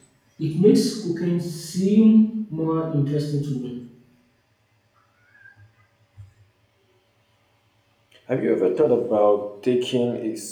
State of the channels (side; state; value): both; identical; correlation 1.00